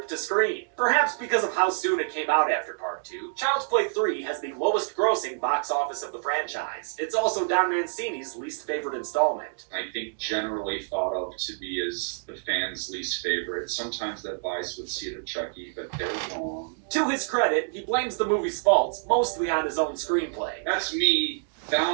to screen. Perhaps because of how soon it came out after Part 2, Child's Play 3 has the lowest grossing box office of the franchise. It's also Don Mancini's least favorite installment. I think generally thought of to be as the fans' least favorite. Sometimes that lies with Seed of Chucky, but they're wrong. To his credit, he blames the movie's faults mostly on his own screenplay. That's me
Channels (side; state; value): left; silent; digital silence